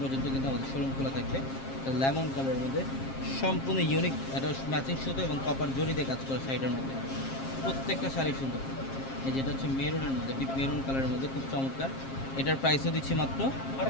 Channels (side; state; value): right; late; 7.5 ms